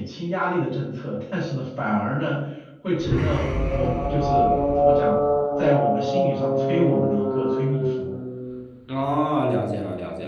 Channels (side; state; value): both; identical; correlation 1.00